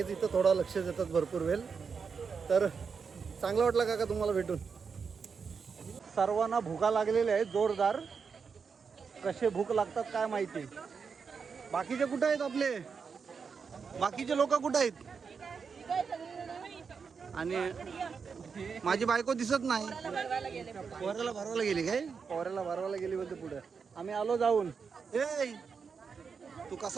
इथं थोडा लक्ष देतात भरपूर वेळ. तर चांगला वाटला काका तुम्हाला भेटून. सर्वांना भुका लागलेल्या आहेत जोरदार. कसे भूक लागतात काय माहिती. बाकीचे कुठे आहेत आपले? बाकीचे लोक कुठे आहेत? आणि माझी बायको दिसत नाही. पोऱ्याला भरवायला गेली काय? पोऱ्याला भरवायला गेली बोलते पुढे. आम्ही आलो जाऊन. ए तू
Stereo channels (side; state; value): left; quieter; 5.7 dB